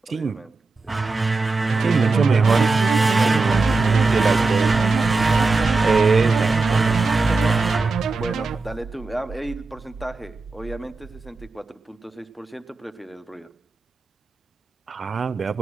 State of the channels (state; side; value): quieter; left; 3.7 dB